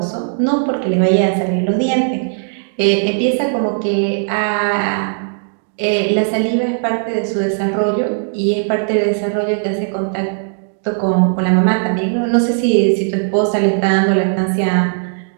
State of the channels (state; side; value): silent; left; digital silence